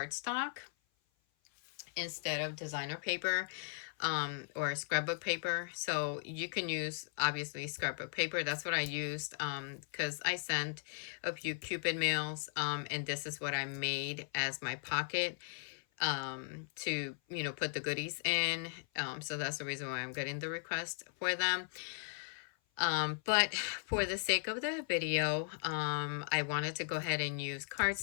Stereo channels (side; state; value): right; silent; 53 dB below the other